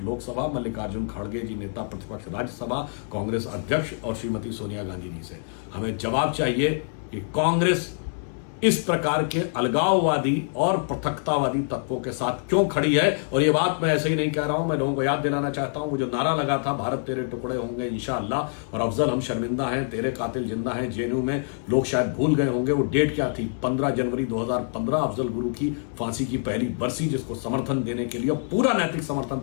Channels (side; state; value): right; silent; 61 dB below the other